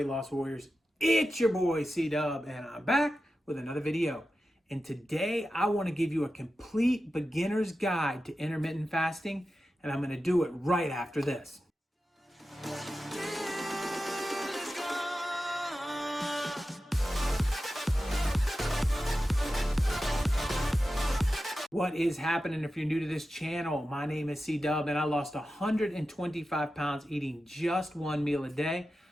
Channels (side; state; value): both; normal; correlation 0.92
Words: loss warriors? It's your boy C-Dub, and I'm back with another video. And today I want to give you a complete beginner's guide to intermittent fasting, and I'm going to do it right after this. What is happening? If you're new to this channel, my name is C-Dub, and I lost 125 pounds eating just one meal a day.